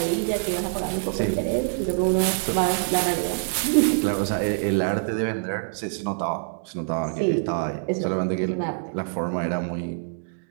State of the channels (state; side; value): silent; left; digital silence